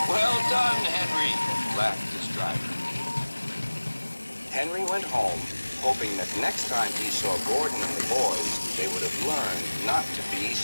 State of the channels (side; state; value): both; inverted; correlation -1.00